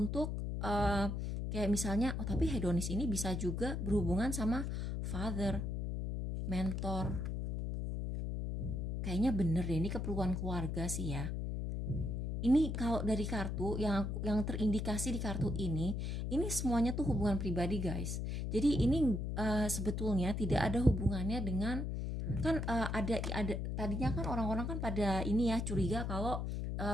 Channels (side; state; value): left; noise; hum, 2 dB below the sound